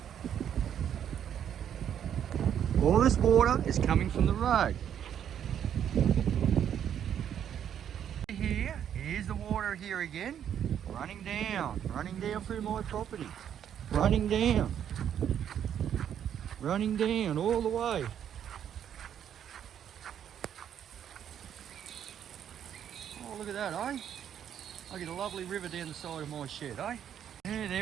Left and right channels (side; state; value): left; quieter; 9.4 dB